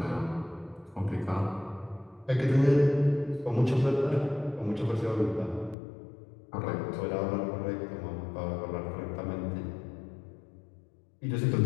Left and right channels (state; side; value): drops out; right; at 5.8 s